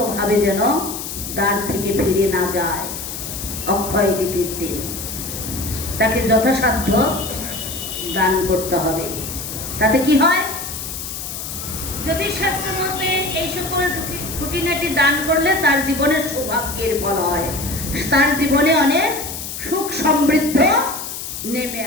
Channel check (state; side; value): noise; left; hiss, 7 dB below the sound